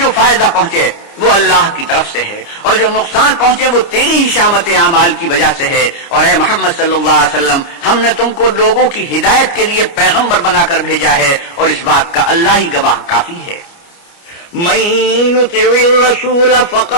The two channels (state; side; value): late; right; 29 ms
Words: فائدہ پہنچے وہ اللہ کی طرف سے ہے، اور جو نقصان پہنچے وہ تیری ہی شامت اعمال کی وجہ سے ہے، اور اے محمد صلی اللہ علیہ وسلم ہم نے تم کو لوگوں کی ہدایت کے لیے پیغمبر بنا کر بھیجا ہے، اور اس بات کا اللہ ہی گواہ کافی ہے۔ من يطع الرسول